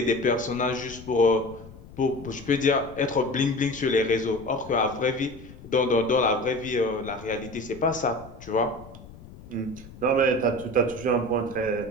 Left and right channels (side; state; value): left; noise; rumble, 18 dB below the sound